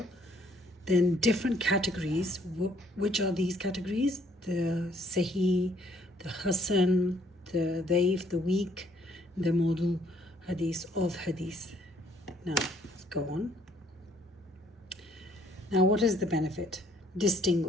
Then different categories. Which are these categories? The Sahih, the Hasan, the Daif, the weak, the Mawdu Hadith of Hadith. Now, let's go on. Now, what is the benefit?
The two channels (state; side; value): normal; both; correlation 0.64